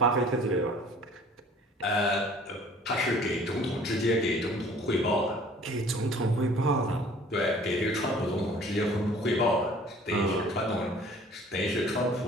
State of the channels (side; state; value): both; normal; correlation 0.51